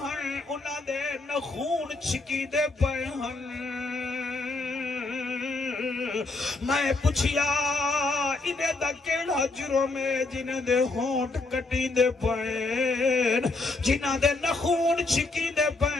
انہیں دے نخون چھکی دے پے ہن میں پوچھیا انہیں دا کیڑا جرم ہے جنہیں دے ہونٹ کٹی دے پین جنہیں دے نخون چھکی دے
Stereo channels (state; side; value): quieter; right; 3.3 dB